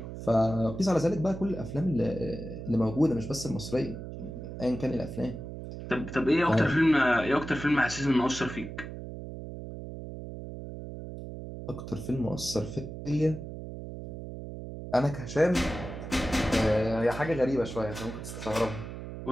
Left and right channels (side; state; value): right; noise; hum, 9 dB below the sound